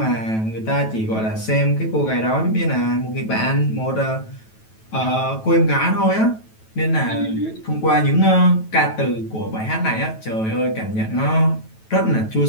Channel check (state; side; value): late; right; 9.2 ms